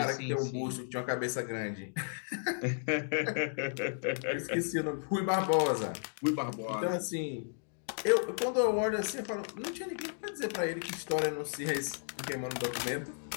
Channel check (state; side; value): silent; right; digital silence